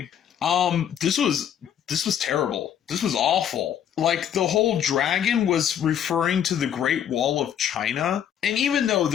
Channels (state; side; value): quieter; right; 9.4 dB